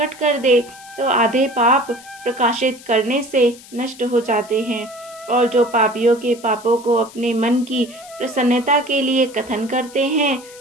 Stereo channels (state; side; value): noise; left; hiss, 20 dB below the sound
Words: कर दे तो आधे पाप प्रकाशित करने से नष्ट हो जाते हैं और जो पापियों के पापों को अपने मन की प्रसन्नता के लिए कथन करते हैं,